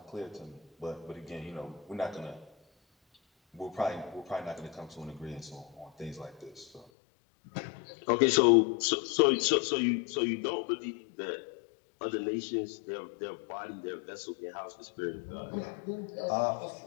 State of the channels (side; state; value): right; drops out; at 6.9 s